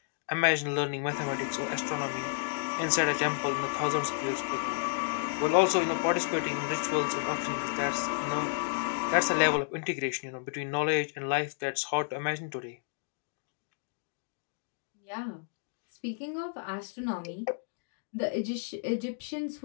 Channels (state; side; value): silent; right; digital silence